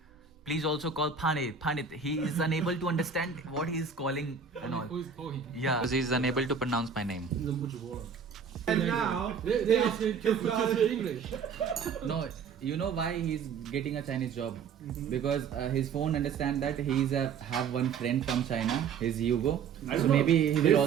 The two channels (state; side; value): quieter; left; 6.2 dB